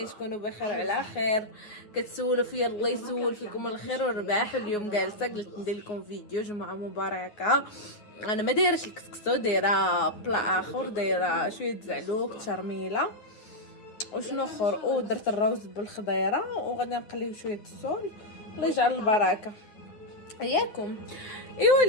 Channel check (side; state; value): right; late; 9.5 ms